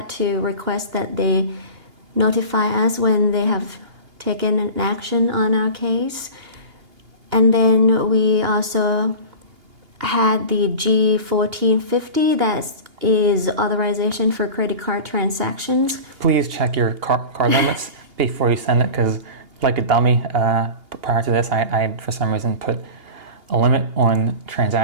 to request that they notify us when they have taken an action on our case. And then we also had the G1450, that is authorization for credit card transactions. Please check your card limits before you send it, because like a dummy, prior to this, I had for some reason put a limit on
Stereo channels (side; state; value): left; late; 2.8 ms